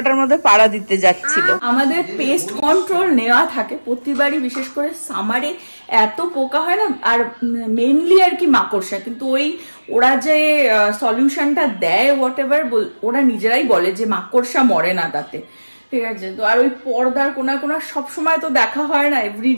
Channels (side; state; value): both; inverted; correlation -1.00